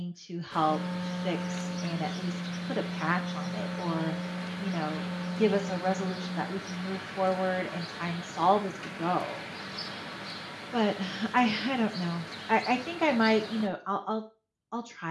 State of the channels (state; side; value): identical; both; correlation 1.00